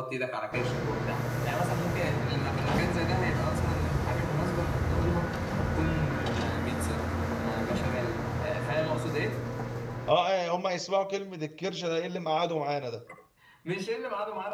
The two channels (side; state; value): both; identical; correlation 1.00